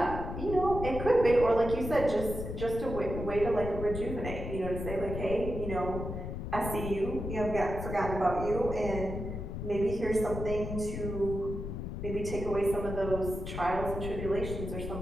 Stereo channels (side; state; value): left; noise; rumble, 6 dB below the sound